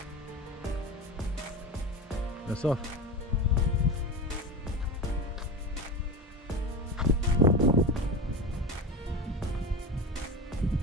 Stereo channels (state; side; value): normal; both; correlation 0.25